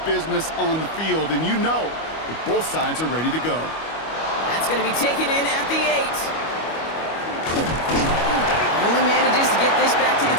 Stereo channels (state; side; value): late; right; 25 ms